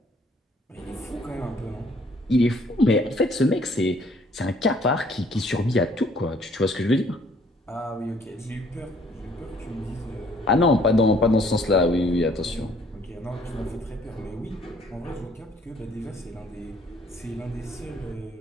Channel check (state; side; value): normal; both; correlation 0.61